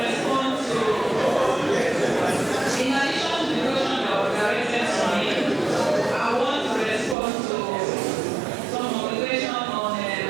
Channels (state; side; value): drops out; left; at 7.2 s